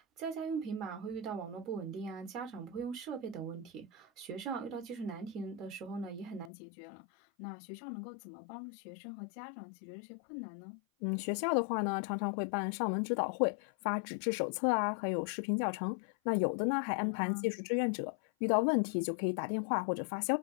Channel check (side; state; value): right; drops out; at 6.5 s